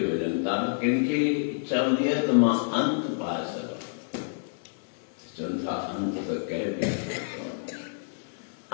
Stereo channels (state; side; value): silent; right; digital silence